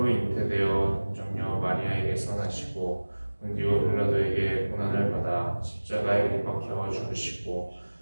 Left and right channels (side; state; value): both; inverted; correlation -1.00